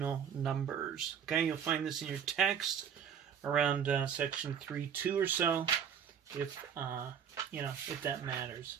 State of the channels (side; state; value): left; quieter; 8.0 dB